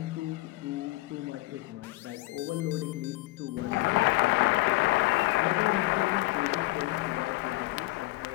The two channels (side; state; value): right; quieter; 20.2 dB